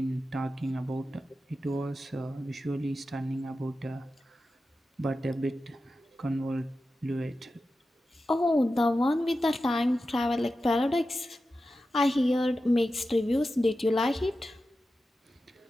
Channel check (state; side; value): normal; both; correlation 0.92